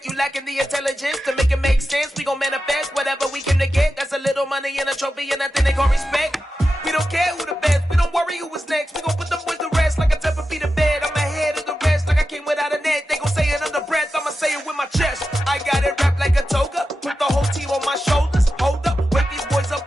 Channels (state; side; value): normal; both; correlation 0.91